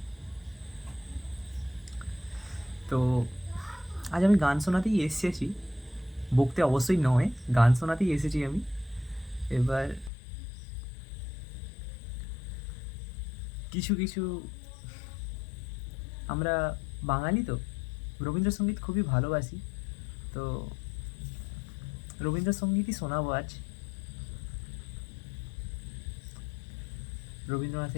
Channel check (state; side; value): drops out; right; at 10.1 s